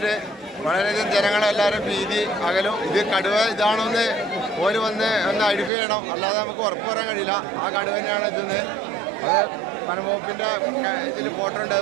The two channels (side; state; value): left; drops out; at 5.7 s